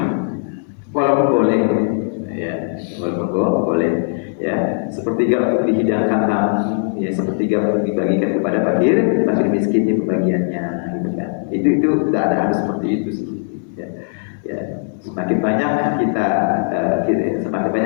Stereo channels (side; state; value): right; silent; 62 dB below the other